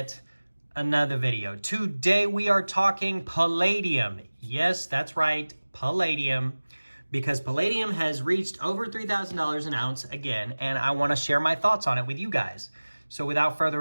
another video. Today we are talking palladium. Yes, that's right, palladium. Because palladium has reached over $3,000 an ounce again, and I want to share my thoughts on it with you guys. So without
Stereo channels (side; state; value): both; inverted; correlation -1.00